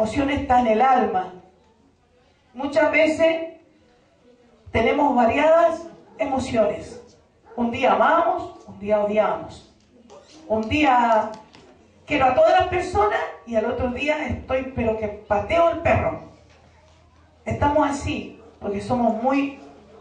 está en el alma. Muchas veces tenemos variadas emociones. Un día amamos, un día odiamos. Un día quiero a todas las personas y al otro día estoy, pero que pateo el perro. Estamos así, porque somos muy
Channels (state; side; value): identical; both; correlation 1.00